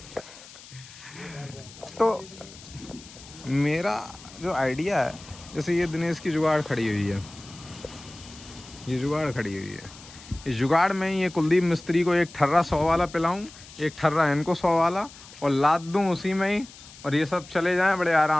तो मेरा जो आइडिया है, जैसे ये दिनेश की जुगाड़ खड़ी हुई है, ये जुगाड़ खड़ी हुई है, इस जुगाड़ में ये कुलदीप मिस्त्री को एक ठर्रा 100 वाला पिलाऊं, एक ठर्रा इनको 100 वाला, और लाद दूं उसी में ही, और ये सब चले जाएं बड़े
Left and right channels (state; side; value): noise; left; hiss, 19 dB below the sound